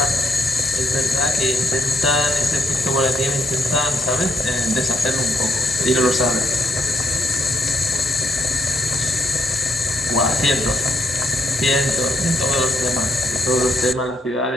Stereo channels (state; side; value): normal; both; correlation 0.74